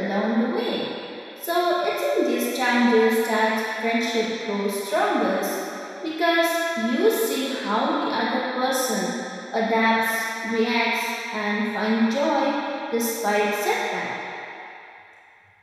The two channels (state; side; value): identical; both; correlation 1.00